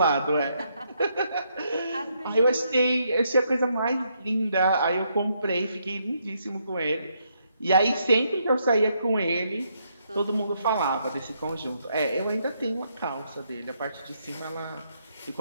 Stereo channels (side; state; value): both; inverted; correlation -0.75